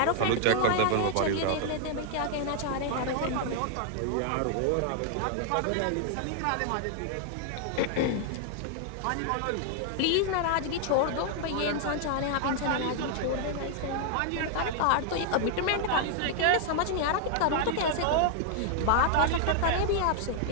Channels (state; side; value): different; both; correlation 0.00